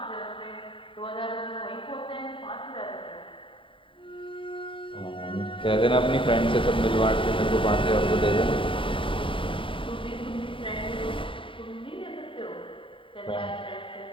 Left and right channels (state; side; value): late; right; 0.25 ms